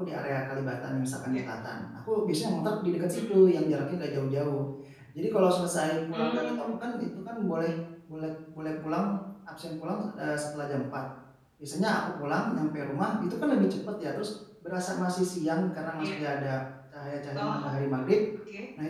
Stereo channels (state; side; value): identical; both; correlation 1.00